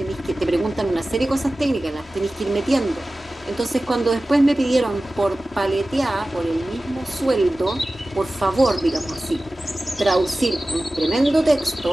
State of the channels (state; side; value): normal; both; correlation 0.96